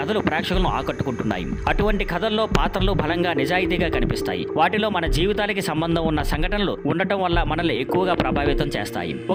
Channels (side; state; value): both; identical; correlation 1.00